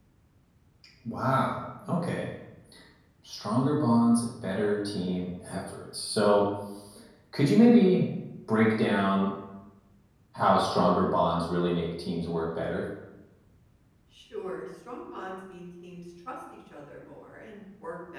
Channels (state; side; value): identical; both; correlation 1.00